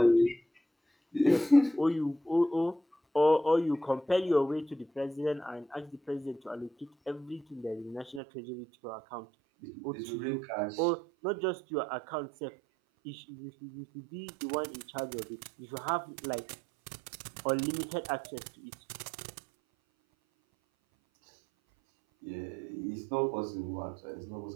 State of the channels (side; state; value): left; drops out; at 8.2 s